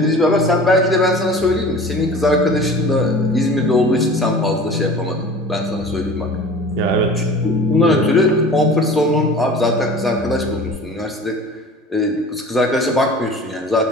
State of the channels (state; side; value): normal; both; correlation 0.41